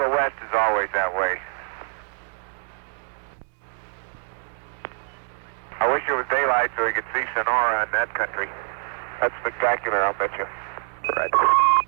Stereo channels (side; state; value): left; silent; 62 dB below the other